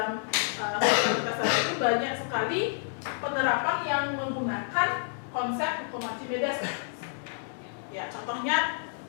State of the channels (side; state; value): right; silent; 58 dB below the other